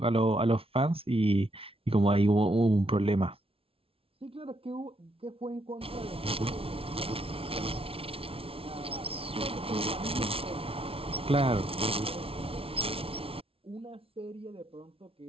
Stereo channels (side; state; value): left; late; 0.27 ms